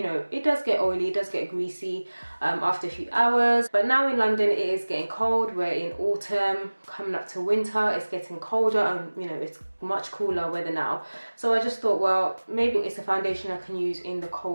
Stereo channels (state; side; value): inverted; both; correlation -1.00